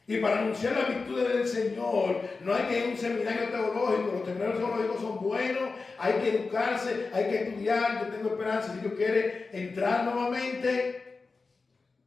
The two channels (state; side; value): quieter; right; 4.1 dB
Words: Y para anunciar las virtudes del Señor, no hay que ir a un seminario teológico. Los seminarios teológicos son buenos, hay que educarse, hay que estudiar. Yo tengo esperanza, si Dios quiere entrar nuevamente.